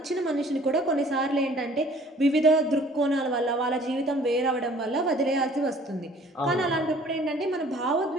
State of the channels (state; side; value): normal; both; correlation 0.53